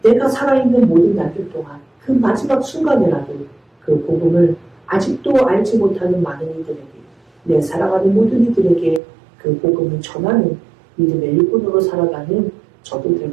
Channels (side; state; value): left; drops out; at 9.0 s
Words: 내가 살아있는 모든 날들 동안 그 마지막 순간에라도 그 복음을 아직도 알지 못하는 많은 이들에게, 내 사랑하는 모든 이들에게 그 복음을 전하는 믿음의 일꾼으로 살아가는 저도